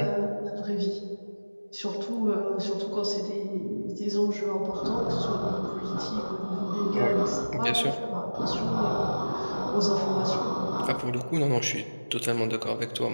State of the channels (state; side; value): inverted; both; correlation -1.00